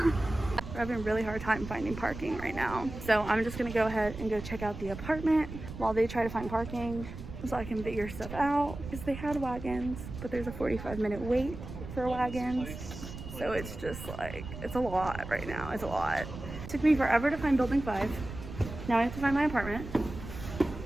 having a really hard time finding parking right now. So I'm just gonna go ahead and go check out the apartment while they try to find parking so I can figure stuff out. Because they had wagons, but there's a 45-minute wait for wagons. So it's just like, it's a lot right now, it's a lot. It took me forever to find building 5. Now I have to find my apartment.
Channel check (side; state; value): right; noise; rumble, 10 dB below the sound